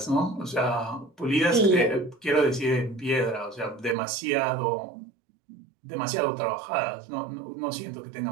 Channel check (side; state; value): left; drops out; at 4.0 s